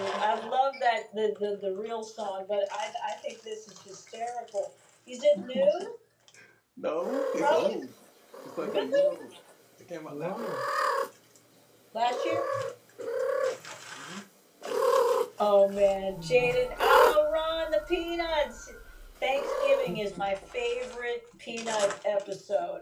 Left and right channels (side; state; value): both; identical; correlation 1.00